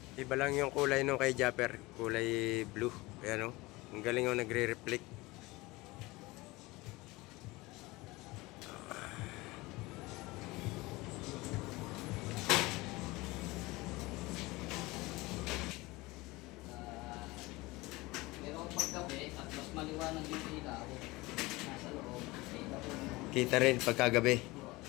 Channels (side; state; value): right; quieter; 21.7 dB